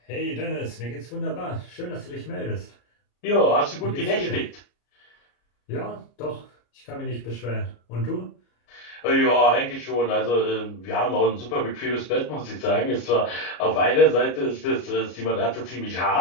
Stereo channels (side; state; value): right; late; 33 ms